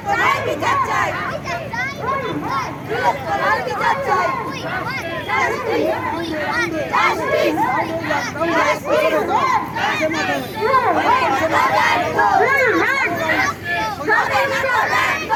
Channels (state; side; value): identical; both; correlation 1.00